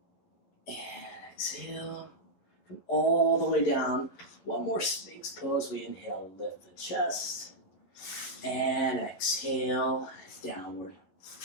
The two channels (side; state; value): right; late; 11 ms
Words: And exhale. Come all the way down. One more Sphinx pose. We inhale, lift the chest. And exhale, downward